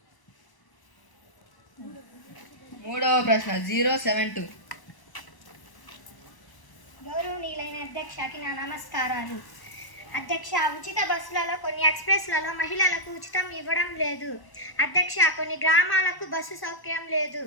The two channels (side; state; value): right; late; 1.0 ms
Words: మూడవ ప్రశ్న 072. గౌరవనీయులైన అధ్యక్షకి నా నమస్కారాలు అధ్యక్ష. ఉచిత బస్సులలో కొన్ని ఎక్స్ప్రెస్లలో మహిళలకు ఉచితం ఇవ్వడం లేదు అధ్యక్ష. కొన్ని గ్రామాలకు బస్సు సౌకర్యం లేదు